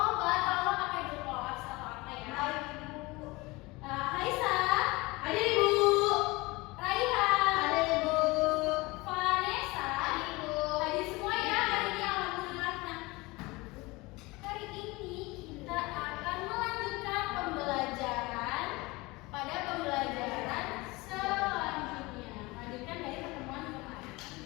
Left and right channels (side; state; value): right; quieter; 23.0 dB